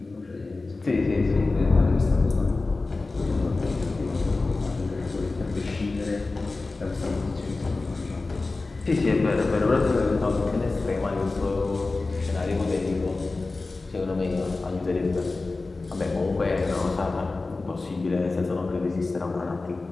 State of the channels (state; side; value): quieter; right; 3.5 dB